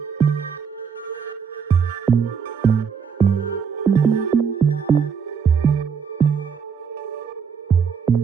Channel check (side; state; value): left; quieter; 6.5 dB